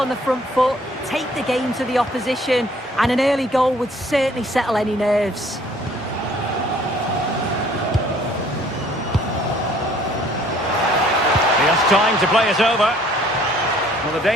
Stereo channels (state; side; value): normal; both; correlation 0.58